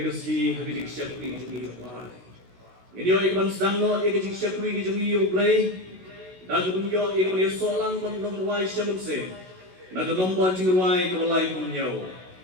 keski hagri syakri jungi kebalang. Ini yo ikaban sedang no ikaban syakri jungi yo play. Nagun yo ikaban solang mandong ruai syamunse. Nagun nomor jungi ruai kebalai punyo.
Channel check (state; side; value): late; left; 16 ms